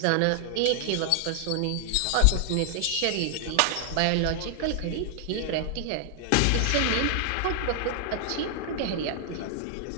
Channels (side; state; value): both; different; correlation 0.00